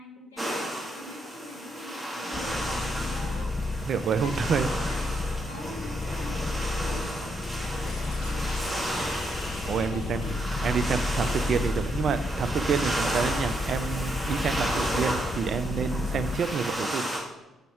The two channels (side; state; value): both; normal; correlation 0.78